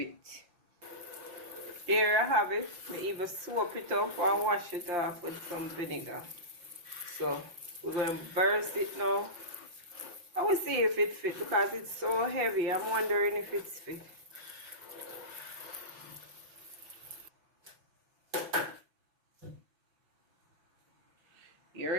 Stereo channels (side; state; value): left; late; 5.8 ms